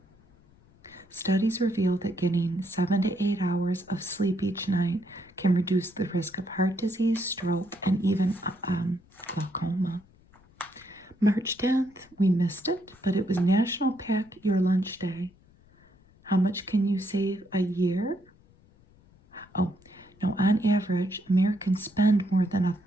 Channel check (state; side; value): noise; left; rumble, 29 dB below the sound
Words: Studies reveal that getting 7 to 8 hours of sleep each night can reduce the risk of heart disease, stroke, and even glaucoma. March 10th, we missed it, but it was National Pack Your Lunch Day. How much can you save a year? Oh, no, on average, Americans spend more than